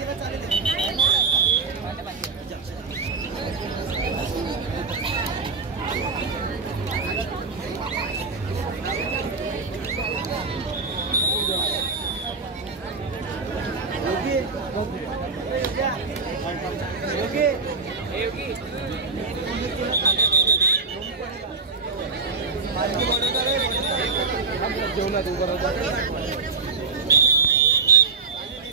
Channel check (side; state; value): left; quieter; 4.5 dB